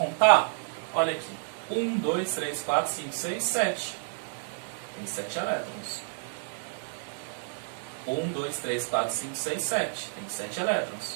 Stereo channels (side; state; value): left; silent; digital silence